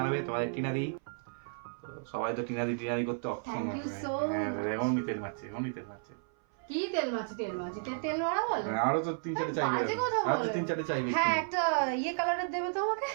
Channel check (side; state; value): left; silent; 56 dB below the other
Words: তোমাদের টিনাদি, সবাই তো টিনাদি করতে অক্ষম। Thank you so much. এমনি তেল মারছে। কি তেল মাছি? তেল মারা বলে? আরো তো 3-4 চাইবে, বাজে কথা বলে। আরো তো 3-4 চাইবে। হ্যাঁ, একটা ইয়ে কালারের দেবে তো আমাকে,